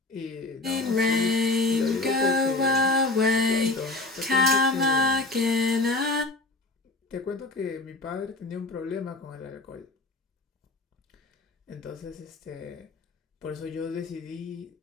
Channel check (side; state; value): right; quieter; 3.1 dB